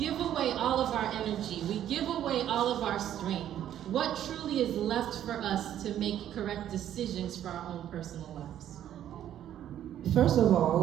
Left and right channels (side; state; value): left; quieter; 11.1 dB